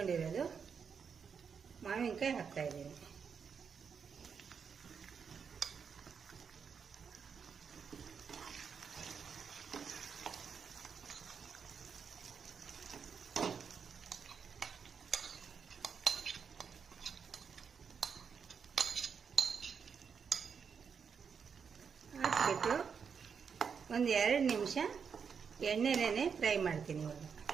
ಮಾವಿನಕಾಯಿ ಹಾಕ್ತಾ ಇದ್ದೀನಿ. ಹಾಕ್ಬಿಟ್ಟು ಒಂದು 2 ನಿಮಿಷ ಎಣ್ಣೆನೇ ಫ್ರೈ ಮಾಡ್ತೀನಿ. ಇವಾಗ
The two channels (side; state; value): left; quieter; 6.4 dB